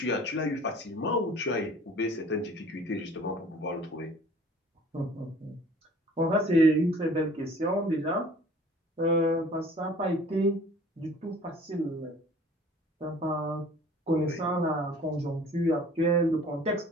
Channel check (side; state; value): both; normal; correlation 0.49